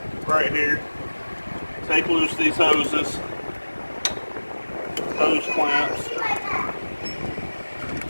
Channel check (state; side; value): inverted; both; correlation -1.00